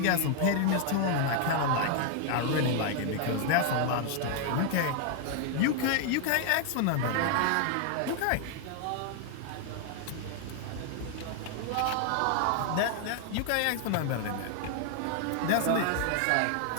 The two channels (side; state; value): both; different; correlation 0.00